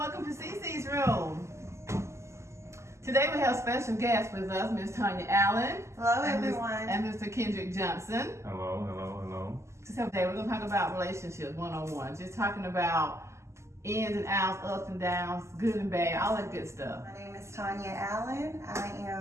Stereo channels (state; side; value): late; left; 0.13 ms